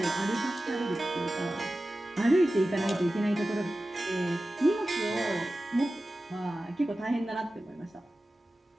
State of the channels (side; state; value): both; normal; correlation 0.95